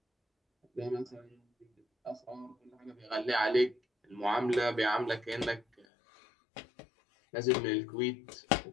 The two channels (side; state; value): right; drops out; at 5.9 s